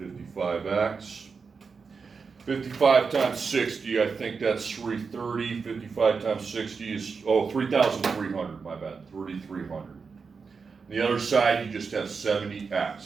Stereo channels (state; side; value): quieter; left; 5.2 dB